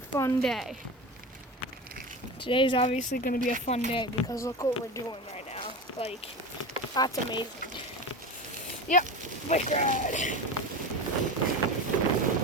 fun day. Today's obviously gonna be a fun day because look what we're doing right now. Like, that's amazing. Yep, bike ride.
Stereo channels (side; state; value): both; normal; correlation 0.26